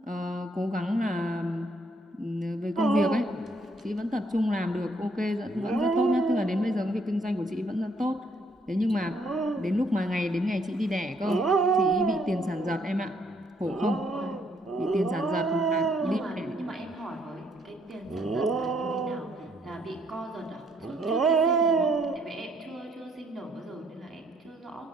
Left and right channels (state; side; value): normal; both; correlation 0.69